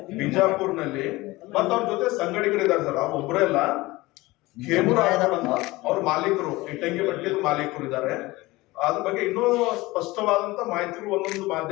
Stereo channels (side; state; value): right; quieter; 20.5 dB